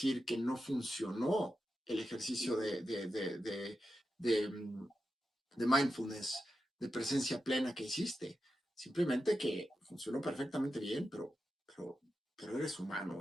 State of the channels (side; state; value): both; normal; correlation 0.89